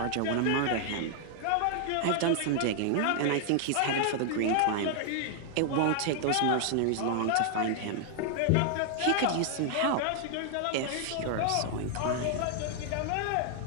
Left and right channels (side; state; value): both; different; correlation 0.00